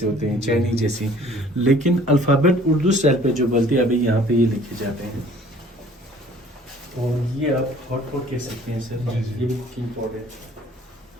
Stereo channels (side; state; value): both; normal; correlation 0.53